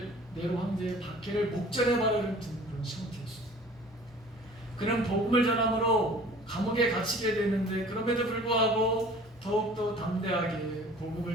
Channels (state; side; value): normal; both; correlation 0.47